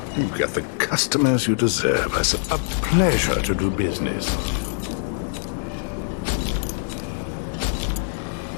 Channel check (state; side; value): silent; right; digital silence